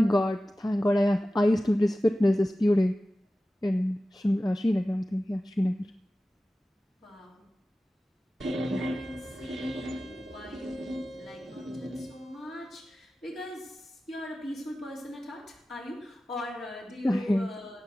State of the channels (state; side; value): normal; both; correlation 0.95